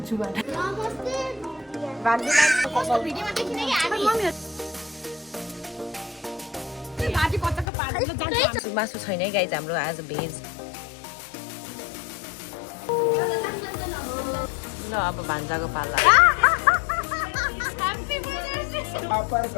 मासु छैन है गाइज हाम्रो आज भेज ल अब भान्जाको पाला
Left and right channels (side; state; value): right; drops out; at 7.7 s